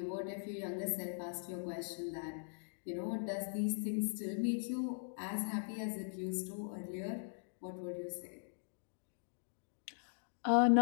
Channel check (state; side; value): silent; right; digital silence